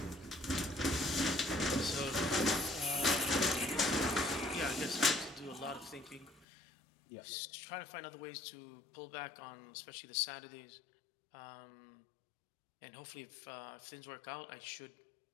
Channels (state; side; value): drops out; right; at 6.5 s